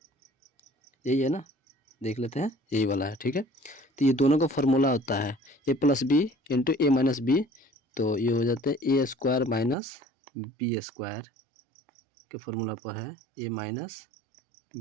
यही है ना, देख लेते हैं, यही वाला है। ठीक है, तो ये दोनों का फार्मूला होता है ए प्लस बी इंटू ए माइनस बी, तो ये हो जाता है ए स्क्वायर माइनस बी स्क्वायर के फार्मूला पर है, ए माइनस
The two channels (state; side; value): drops out; left; at 9.8 s